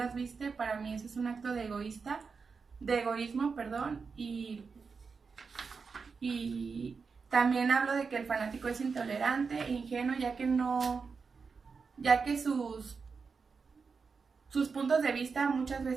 viste, para mí eso es un acto de egoísmo, perdón, y también hablo de que el fanático es intolerante e ingenuo, ya que sus puntos de vista muchas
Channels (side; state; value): left; quieter; 5.1 dB